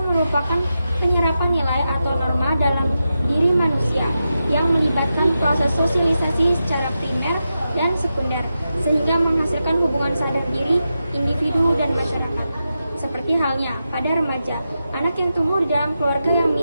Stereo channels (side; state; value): both; inverted; correlation -0.89